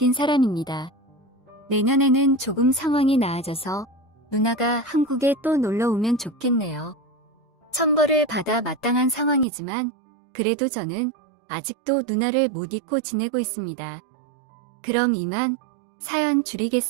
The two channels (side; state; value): left; drops out; at 9.5 s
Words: 사람입니다. 내년에는 조금 상황이 나아져서 누나가 한국에 또 놀러 오면 좋겠네요. 천벌을 받아 마땅한 상황이지만 그래도 저는 아직도 누나를 못 잊고 지내고 있습니다. 그럼 이만 사연